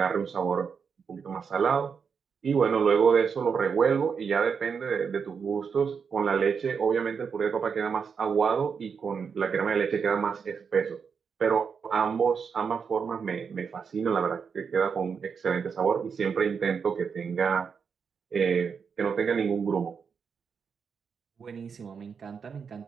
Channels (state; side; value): quieter; left; 6.2 dB